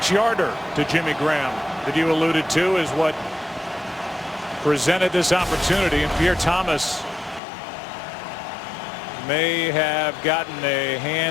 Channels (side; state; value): right; drops out; at 7.4 s